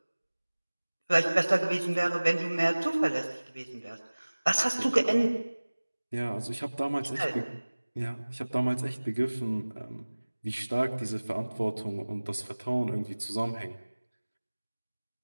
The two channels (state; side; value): inverted; both; correlation -1.00